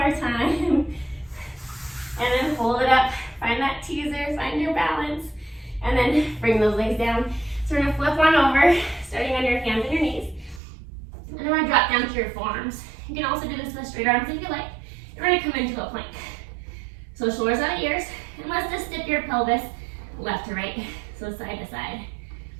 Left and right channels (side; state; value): left; drops out; at 10.6 s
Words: time. And then hold it up. Find that teaser, find your balance. And then bring those legs down. So we're gonna flip on over, starting on your hands and your knees. And we're gonna drop down to your forearms. You can also do this with straight arms if you like. And we're gonna come into a plank. So shoulders out ears, and let's just dip your pelvis left to right, so side to side.